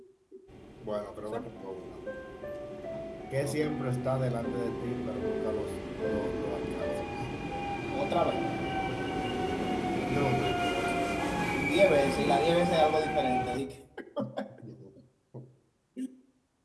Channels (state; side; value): identical; both; correlation 1.00